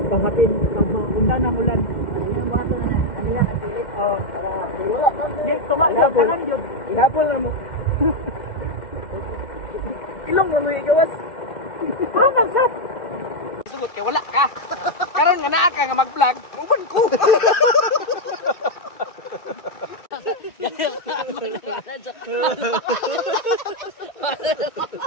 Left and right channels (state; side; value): late; right; 2.1 ms